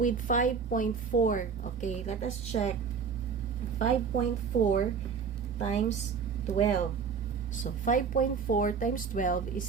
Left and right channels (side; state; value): left; quieter; 6.0 dB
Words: 5.4. Okay, let us check. 5.4 times 12. So, 5.4 times 12 is